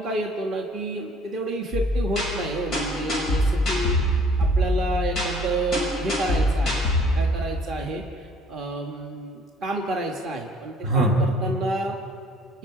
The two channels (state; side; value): normal; both; correlation 0.56